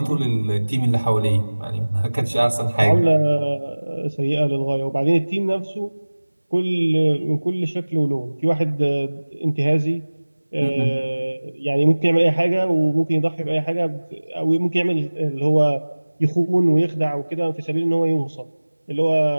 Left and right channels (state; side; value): inverted; both; correlation -1.00